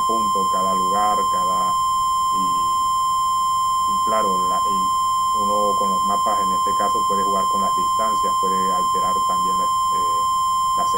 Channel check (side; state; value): left; noise; rumble, 19 dB below the sound